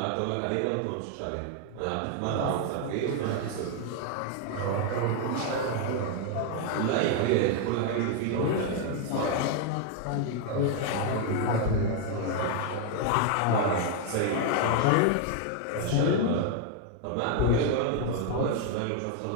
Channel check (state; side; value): different; both; correlation 0.00